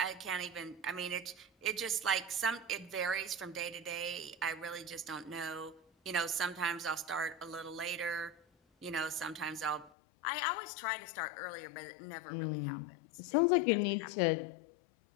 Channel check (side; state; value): right; drops out; at 9.9 s